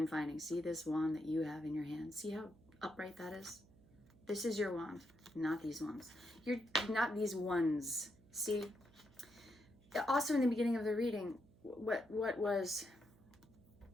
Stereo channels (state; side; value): noise; right; hum, 26 dB below the sound